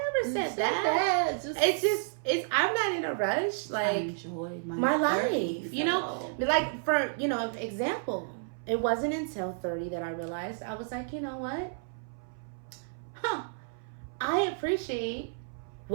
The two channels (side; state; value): left; silent; 57 dB below the other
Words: never said that. I'm not in a rush. Like, I enjoy my life. Like, for, example, it wasn't until 30 that I realized, I was like, you know what? I appreciate